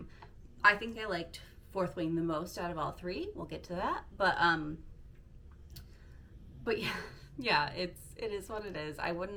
I think I liked Fourth Wing the most out of all three. We'll get to that. But yeah, it is what it is. I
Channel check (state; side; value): identical; both; correlation 1.00